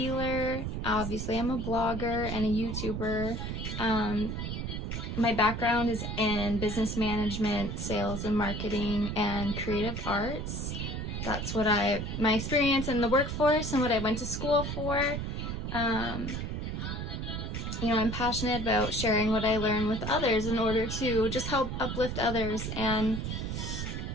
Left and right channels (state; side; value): noise; right; rumble, 4 dB below the sound